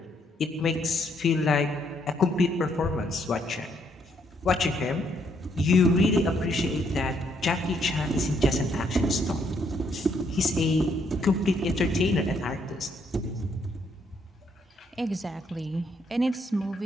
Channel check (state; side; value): normal; both; correlation 0.72